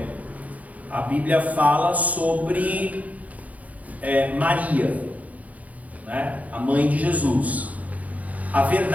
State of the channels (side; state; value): left; late; 0.073 ms